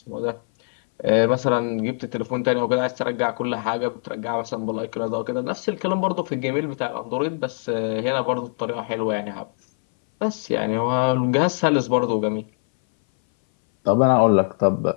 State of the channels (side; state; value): right; silent; 60 dB below the other